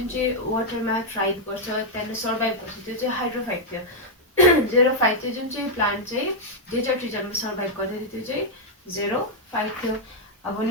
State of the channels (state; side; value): normal; both; correlation -0.03